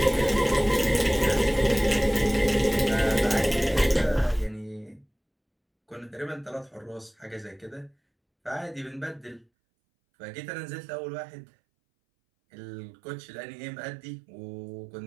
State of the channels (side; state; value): left; drops out; at 9.5 s